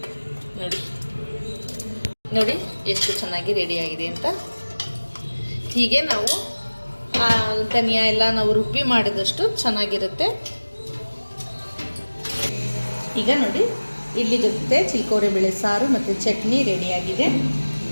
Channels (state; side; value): inverted; both; correlation -1.00